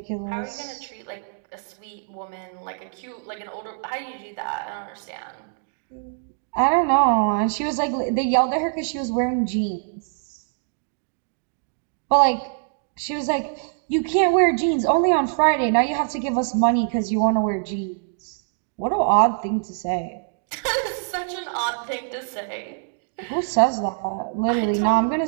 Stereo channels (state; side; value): silent; left; digital silence